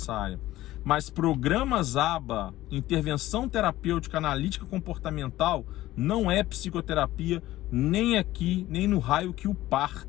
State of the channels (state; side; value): quieter; right; 15.8 dB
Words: Mas programas ABA, intervenção terapêutica analítica comportamental, não é psicoterapia, nem aqui, nem no raio que o